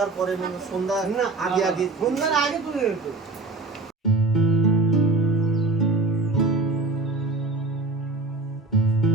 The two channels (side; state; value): left; quieter; 3.3 dB